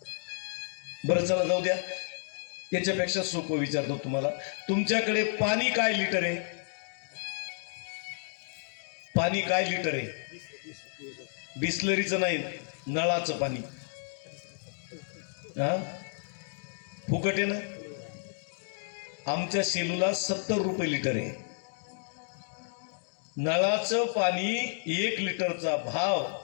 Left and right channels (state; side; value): silent; right; digital silence